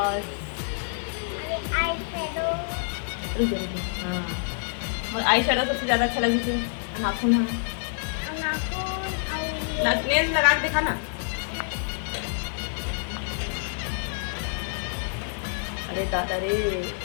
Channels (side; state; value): right; silent; digital silence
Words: हाँ और आई शेडो सबसे ज़्यादा अच्छा लगी थी। नाखून है नेल्स लगा के दिखा ना। अरे दादा रे